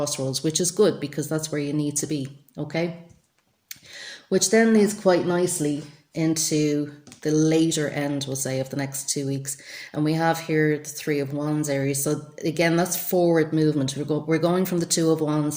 which is good because that's where you need to be. Okay, which then leads quite nicely into the later end, we'll say, of the next 2 weeks. And we have here the Three of Wands, Aries. So again, that's forward movement. We're going from the Two of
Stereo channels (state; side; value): identical; both; correlation 1.00